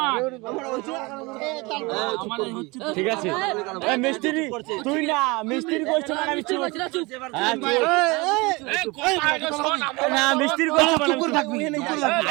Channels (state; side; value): quieter; left; 25.0 dB